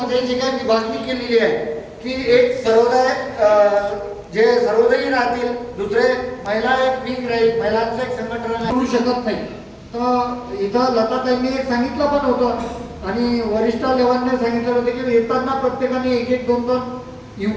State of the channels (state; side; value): identical; both; correlation 1.00